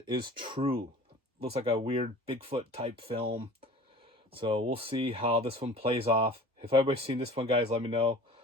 is True. Looks like a weird Bigfoot type film. So we'll see how this one plays off. If anybody's seen this one, guys, let me know.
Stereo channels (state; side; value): normal; both; correlation 0.43